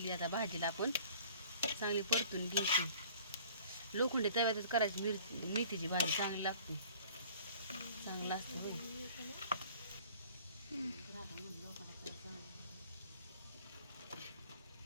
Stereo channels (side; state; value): both; inverted; correlation -0.50